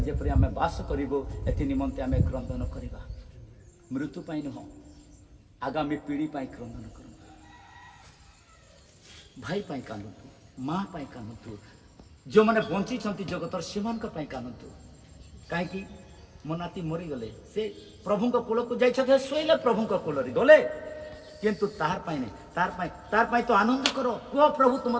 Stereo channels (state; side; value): identical; both; correlation 1.00